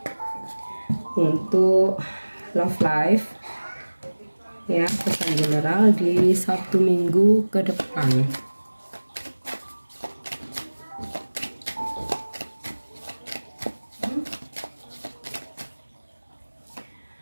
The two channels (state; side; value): inverted; both; correlation -1.00